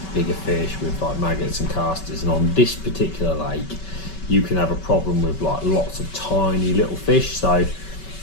bigger fish with like maggots and casters. And on this particular lake you can have a problem with like lots of tiny little fish, so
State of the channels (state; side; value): late; right; 5.2 ms